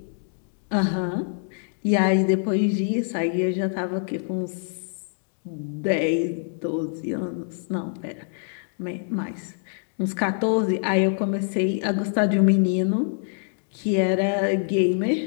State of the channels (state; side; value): silent; right; digital silence